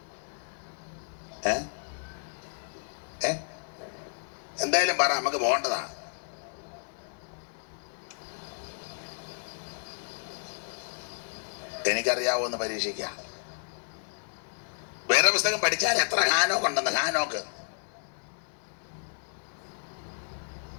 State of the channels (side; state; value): right; silent; 57 dB below the other